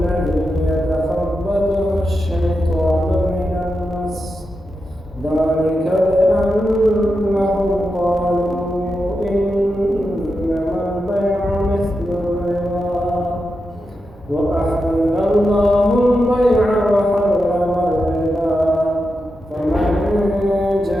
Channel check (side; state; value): both; normal; correlation 0.88